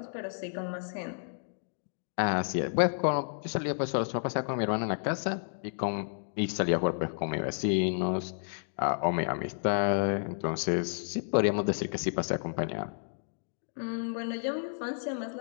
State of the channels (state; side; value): silent; right; digital silence